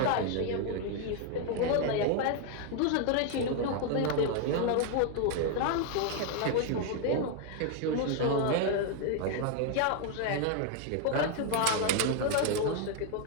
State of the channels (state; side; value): different; both; correlation 0.00